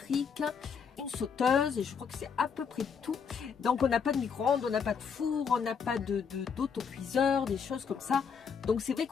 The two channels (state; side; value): quieter; right; 6.3 dB